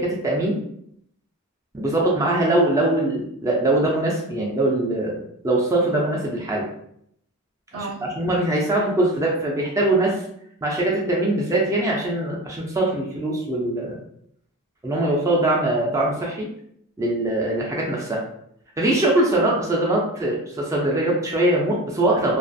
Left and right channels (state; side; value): normal; both; correlation 0.31